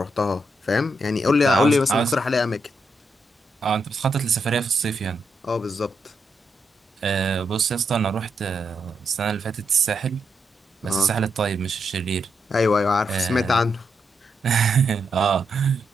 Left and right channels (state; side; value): normal; both; correlation 0.81